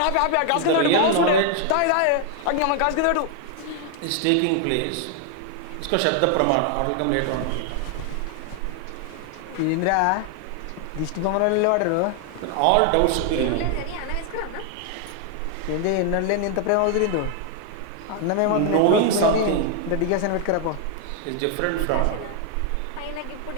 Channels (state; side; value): different; both; correlation 0.00